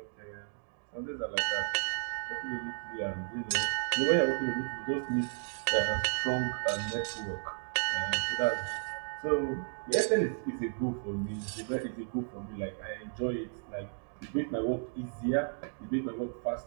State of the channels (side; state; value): left; silent; 55 dB below the other